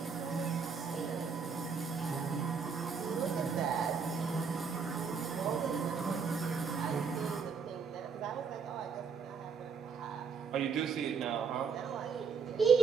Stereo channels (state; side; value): quieter; left; 5.8 dB